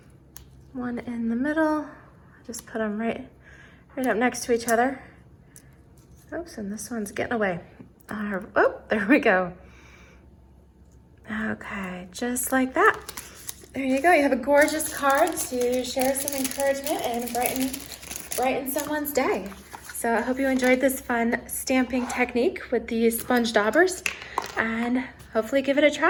1 in the middle. Just put them right up next to each other. Oops, and this one's getting away. Oh, there we go. Okay, just like that. There you go. You have a gorgeous card to share some encouragement and brighten someone's day. So I hope you enjoyed this fun stamping technique with the sponge daubers, and hopefully give it a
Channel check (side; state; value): both; identical; correlation 1.00